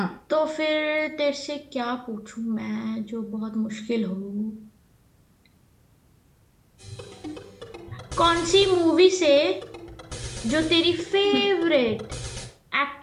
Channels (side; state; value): both; identical; correlation 1.00